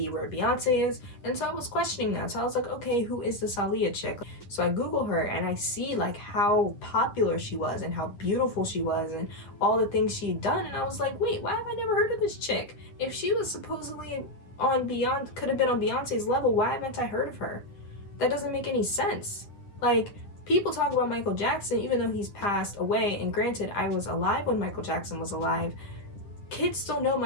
where Beyonce is. And so I was questioning that. So I was like, okay, who is this Aaliyah chick? So I Google her and I see like how popular she was and how beautiful she was and all the things she'd done. And I was like, wait, why have I never heard of this chick? If she was supposedly on could have been on Beyonce's level, why haven't I heard of her? That doesn't make any sense. Like, people talk about Michael Jackson even though he's passed away, and granted, I was alive when Michael Jackson was alive. Kids still know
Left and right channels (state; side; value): late; right; 9.6 ms